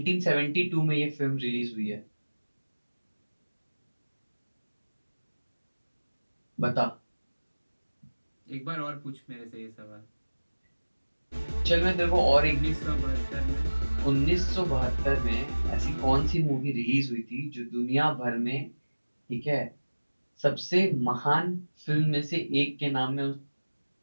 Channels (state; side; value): inverted; both; correlation -1.00